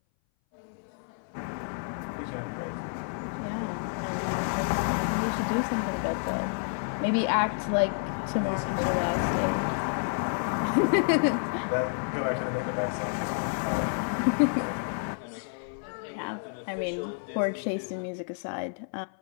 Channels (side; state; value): right; silent; 58 dB below the other